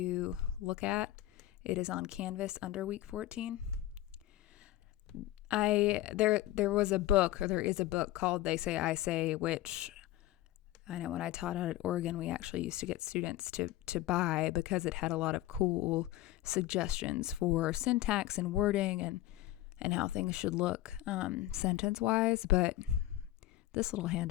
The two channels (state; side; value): quieter; right; 15.2 dB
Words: look at. It is on Canvas under week 14. There was a book, or there is a book called They Say, I Say, which I know when I taught out at Oregon, we actually used to get students to buy because it had a lot of cool suggestions for syntax and wording and how things should look sentence-wise. But this little